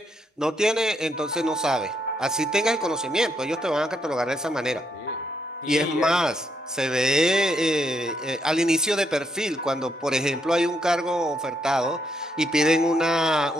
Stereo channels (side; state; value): both; normal; correlation 0.76